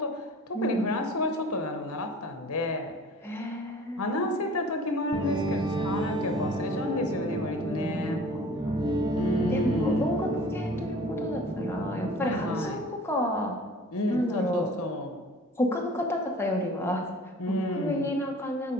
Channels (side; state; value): both; normal; correlation 0.46